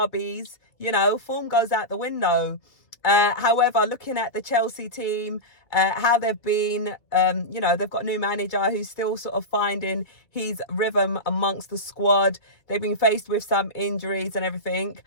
form goes out the window. However, looking at the Chelsea team, how they've been, they've got a new manager who's still sort of finding his rhythm amongst the squad. They've been faced with some injuries and everything.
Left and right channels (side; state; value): right; late; 2.3 ms